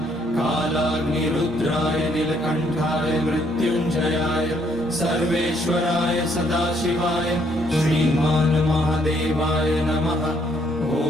कालाग्निरुद्राय नीलकण्ठाय मृत्युञ्जयाय सर्वेश्वराय सदाशिवाय श्रीमान् महादेवाय नमः। ॐ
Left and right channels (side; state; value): both; normal; correlation 0.69